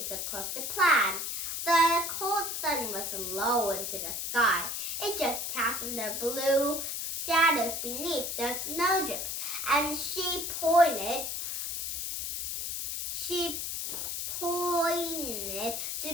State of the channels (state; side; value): noise; left; hiss, 3 dB below the sound